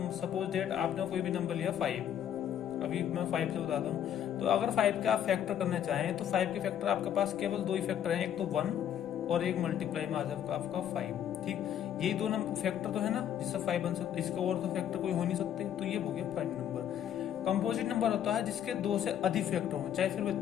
सपोज डेट आपने कोई भी नंबर लिया 5, अभी मैं 5 से बताता हूँ। तो अगर 5 का आप फैक्टर करना चाहें तो 5 के फैक्टर आपके पास केवल 2 ही फैक्टर हैं, एक तो 1 और एक मल्टीप्लाई में आ जाएगा आपका 5। ठीक, यही दो फैक्टर तो है ना जिससे 5 बन सकते, इसके और तो फैक्टर कोई हो नहीं सकते। तो ये हो गया प्राइम नंबर। कंपोजिट नंबर होता है जिसके 2 से अधिक फैक्टर हो, चाहे फिर वे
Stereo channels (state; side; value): quieter; right; 9.9 dB